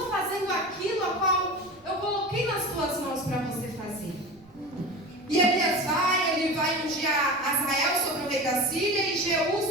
fazendo aquilo a qual eu coloquei nas tuas mãos para você fazer. E Elias ele vai ungir Azael sobre o rei da Síria e Jeú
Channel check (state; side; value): noise; right; rumble, 29 dB below the sound